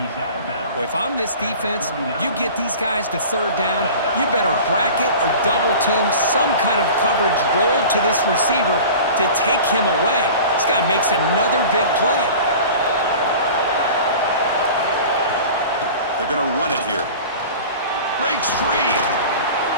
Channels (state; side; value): inverted; both; correlation -0.39